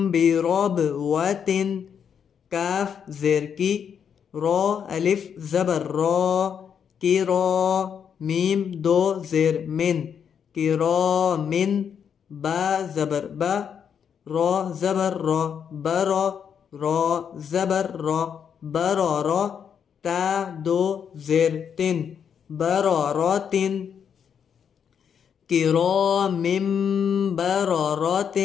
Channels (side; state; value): right; quieter; 7.6 dB